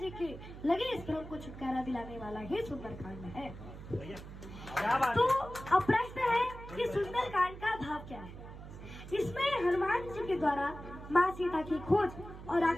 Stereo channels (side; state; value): right; noise; hum, 13 dB below the sound